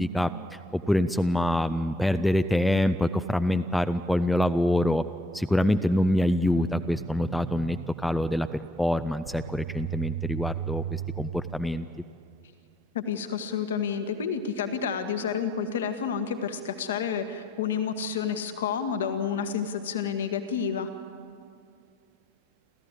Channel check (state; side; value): normal; both; correlation 0.66